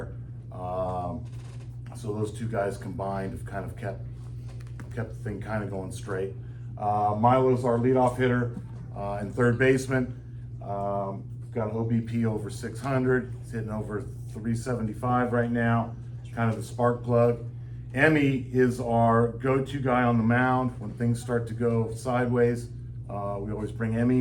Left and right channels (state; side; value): identical; both; correlation 1.00